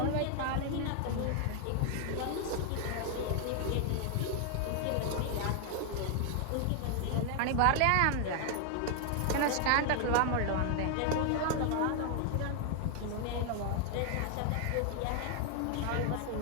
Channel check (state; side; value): different; both; correlation 0.00